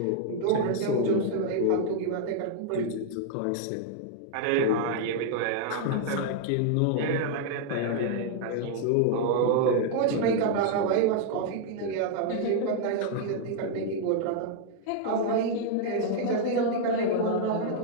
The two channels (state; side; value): different; both; correlation 0.00